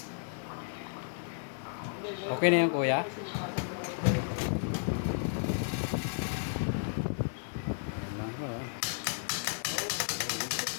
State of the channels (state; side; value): silent; right; 56 dB below the other